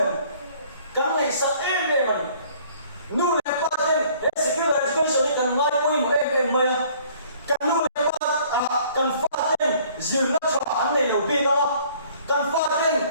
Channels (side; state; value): both; inverted; correlation -0.57